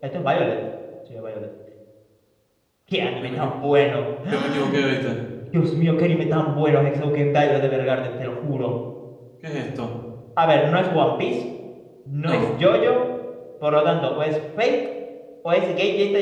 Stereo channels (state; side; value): identical; both; correlation 1.00